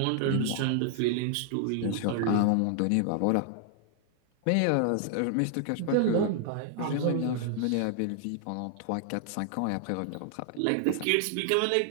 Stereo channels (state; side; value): different; both; correlation 0.00